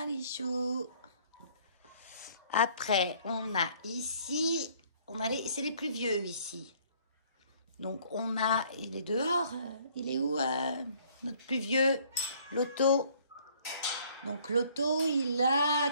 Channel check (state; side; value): inverted; both; correlation -0.60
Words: les choux. Après, on a ici... c'est les plus vieux ici. Donc, on a... Il est dehors. Il est où, notre plus vieux? Loto. Donc, Loto, il a